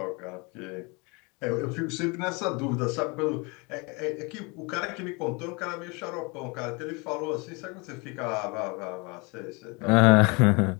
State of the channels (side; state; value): right; quieter; 28.9 dB